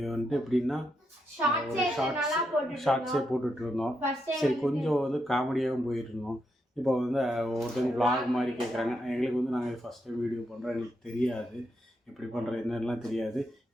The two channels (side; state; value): both; normal; correlation 0.82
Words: வந்துட்டு எப்படின்னா ஒரு ஷார்ட்ஸே போட்டுட்ருந்தோம். சரி, கொஞ்சம் வந்து காமெடியாகவும் போயிட்டுருந்தோம். இப்போ வந்து ஒருத்தவங்க vlog மாதிரி கேட்குறாங்க. எங்களுக்கு வந்து நாங்கள் ஃபஸ்ட் டைம் வீடியோ பண்ணுறோம், எங்களுக்கு தெரியாது எப்படி பண்ணுறது என்னெல்லாம் தெரியாது.